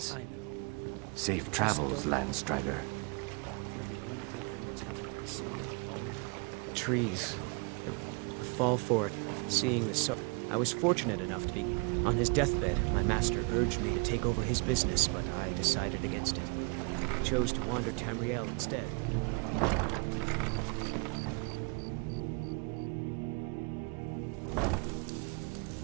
I know. Safe travels, Landstrider. You're the only good thing that's happened to this city in a long time. Trees. A fall for it. Seeing the so... I was fortunate enough to be... On his deathbed, my master urged me to take over his business, but I decided against it. I chose to wander Tamriel instead.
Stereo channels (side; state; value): left; quieter; 33.5 dB